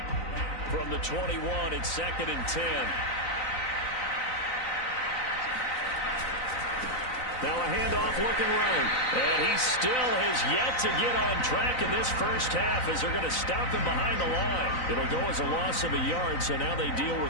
From the 21, it's 2nd and 10. Now a handoff looking right. And he still has yet to get on track in this first half as they're going to stop him behind the line. It'll go as a loss of a yard, so now they deal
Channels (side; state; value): right; late; 3.9 ms